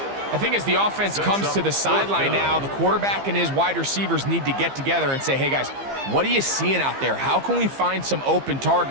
I think as the offense comes to the sideline now, the quarterback and his wide receivers need to get together and say, hey, guys, what are you seeing out there? How can we find some open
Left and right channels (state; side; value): late; left; 15 ms